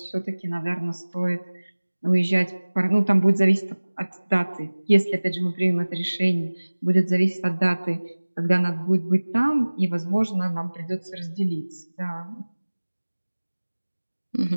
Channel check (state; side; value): inverted; both; correlation -1.00